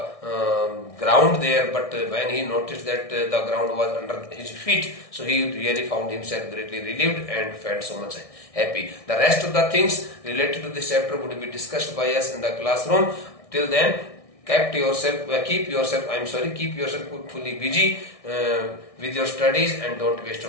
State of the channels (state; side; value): late; right; 1.6 ms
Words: ground there, but when he noticed that the ground was under his feet, so he really found himself greatly relieved and felt so much happy. The rest of the things related to this chapter would be discussed by us in the classroom. Till then, keep yourself fully busy with your studies, and don't waste